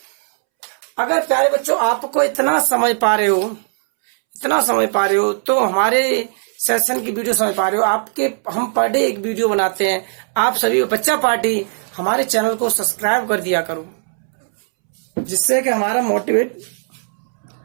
अगर प्यारे बच्चों आपको इतना समझ पा रहे हो तो हमारे सेशन की वीडियो समझ पा रहे हो। हम पर डे एक वीडियो बनाते हैं। आप सभी बच्चा पार्टी हमारे चैनल को सब्सक्राइब कर दिया करो, जिससे कि हमारा मोटिवेट।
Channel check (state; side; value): silent; left; 67 dB below the other